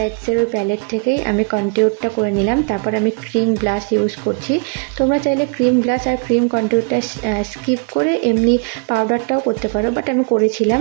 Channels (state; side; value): quieter; left; 34.9 dB